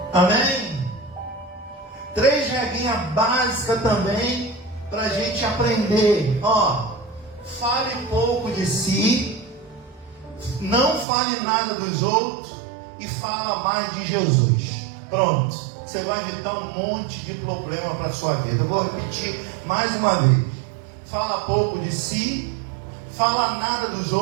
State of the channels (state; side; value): drops out; left; at 11.1 s